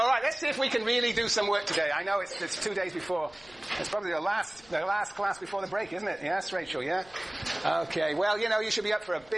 let's see if we can really do some work today. I know it's 2 days before. It's probably the last class before the break, isn't it? Yes, Rachel, yeah? Okay, well, you should be up for a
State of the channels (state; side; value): noise; left; rumble, 27 dB below the sound